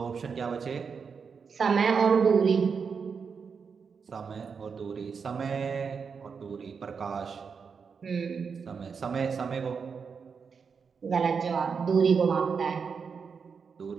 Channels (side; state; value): left; quieter; 5.9 dB